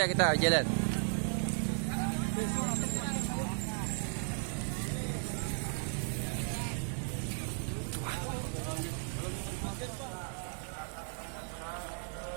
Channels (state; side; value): silent; left; 54 dB below the other